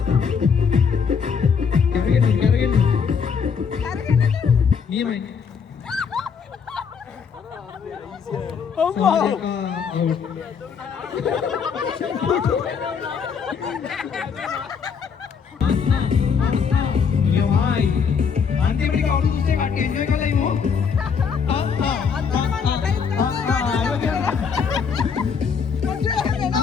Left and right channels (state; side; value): quieter; right; 6.3 dB